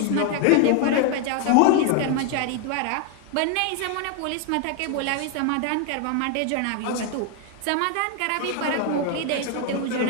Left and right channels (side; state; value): both; different; correlation 0.01